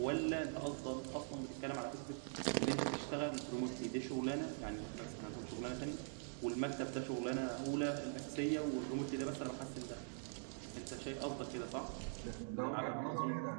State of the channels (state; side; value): silent; left; digital silence